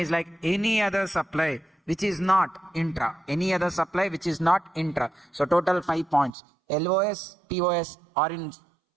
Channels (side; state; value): left; drops out; at 6.4 s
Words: like any other supply which is not intra. Any other supply which is not intra. So total 5 points. LOS, POS are in